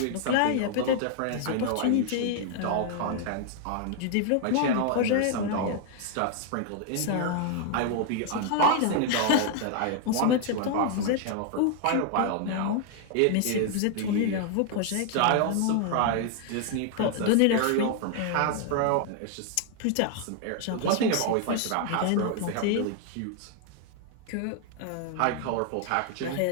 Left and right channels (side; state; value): both; different; correlation 0.00